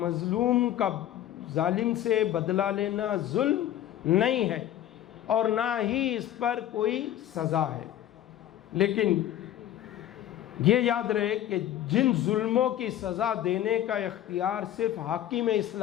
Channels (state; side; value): quieter; right; 12.0 dB